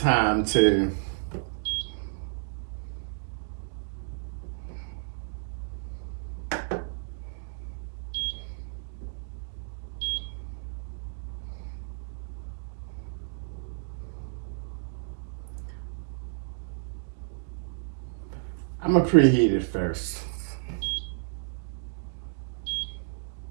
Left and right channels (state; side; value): silent; left; digital silence